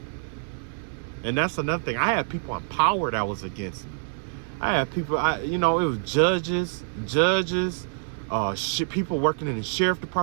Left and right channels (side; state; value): left; silent; digital silence